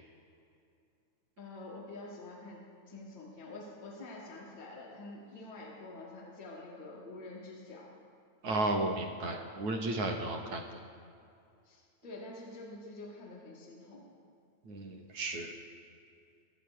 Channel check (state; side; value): late; left; 9.3 ms